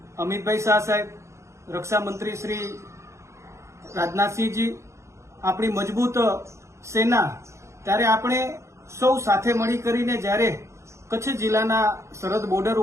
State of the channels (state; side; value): late; left; 0.14 ms